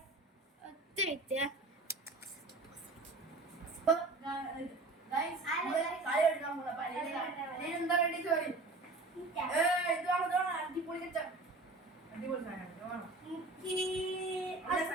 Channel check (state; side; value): quieter; left; 3.2 dB